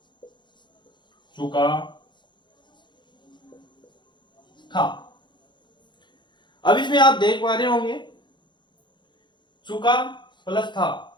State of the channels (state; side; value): late; right; 0.22 ms